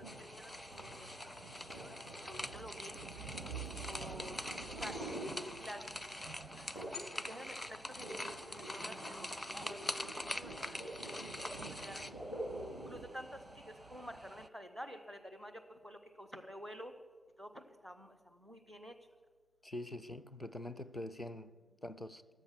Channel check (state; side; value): normal; both; correlation 0.78